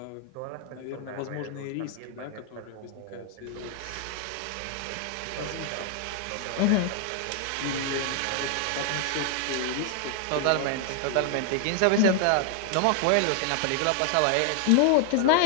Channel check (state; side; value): different; both; correlation 0.00